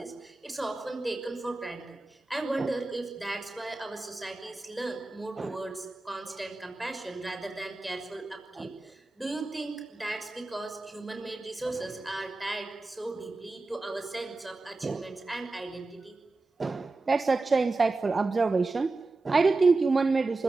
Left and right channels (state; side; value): quieter; left; 3.4 dB